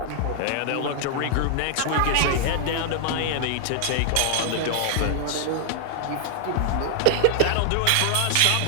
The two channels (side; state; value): both; different; correlation -0.01